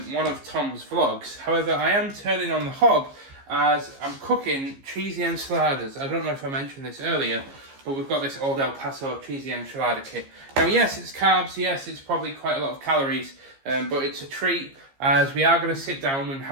of Tom's vlogs. However, I am turning on the hob as I'm cooking cheesy enchiladas. I don't know if I mentioned this earlier, but we've got this Old El Paso cheesy enchilada kit. Now, yes, it's carbs. Yes, it's probably quite a lot of calories, but it's a treat as we are going to sit down and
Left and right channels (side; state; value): left; late; 15 ms